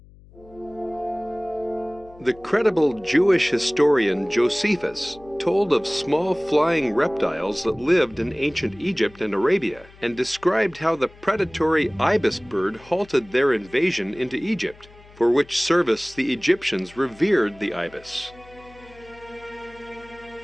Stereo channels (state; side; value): noise; left; hum, 24 dB below the sound